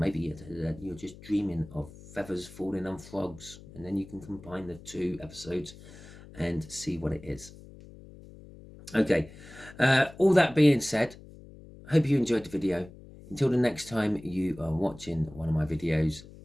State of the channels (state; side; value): noise; left; hum, 19 dB below the sound